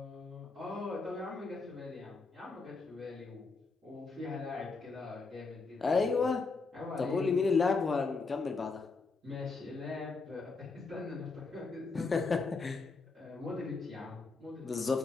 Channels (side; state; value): right; quieter; 4.1 dB